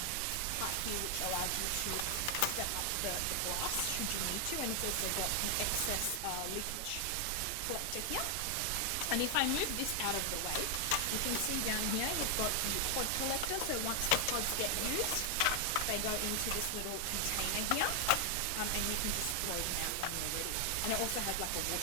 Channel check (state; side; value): different; both; correlation 0.00